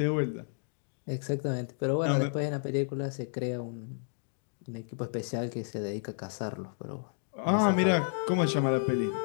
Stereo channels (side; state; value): right; silent; digital silence